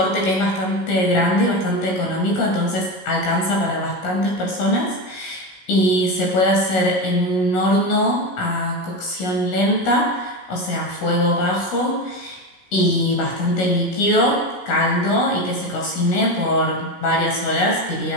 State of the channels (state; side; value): late; right; 16 ms